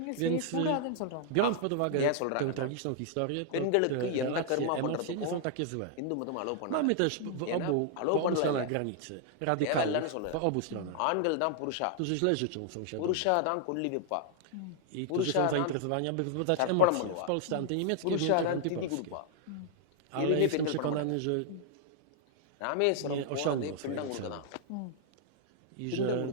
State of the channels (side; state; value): both; different; correlation -0.01